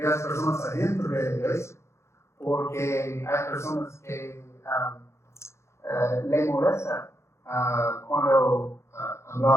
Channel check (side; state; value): right; late; 0.13 ms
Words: las personas adentro de la iglesia, porque hay personas que le molesta cuando